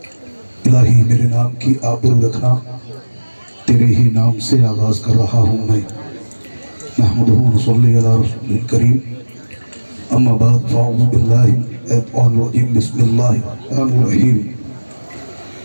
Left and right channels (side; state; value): both; inverted; correlation -1.00